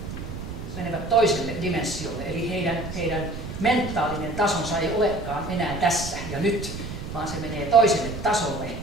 menevät toiselle dimensiolle, eli heidän mentaalinen tasonsa ei olekaan enää tässä ja nyt, vaan se menee toiselle tasolle,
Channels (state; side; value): noise; right; rumble, 9 dB below the sound